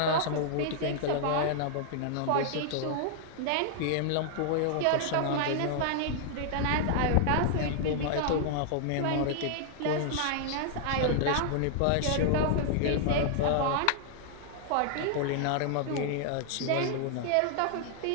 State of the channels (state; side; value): different; both; correlation -0.01